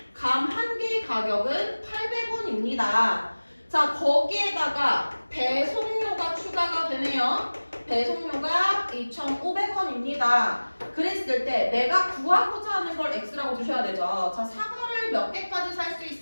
감 한 개의 가격은 800원입니다. 자, 거기에다가 배송료가 추가가 되네요. 배송료가 2,500원입니다. 그랬을 때 내가 구하고자 하는 걸 X라고 주셔야 되죠. 자, 사과를 몇 개까지 살 수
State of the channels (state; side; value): inverted; both; correlation -1.00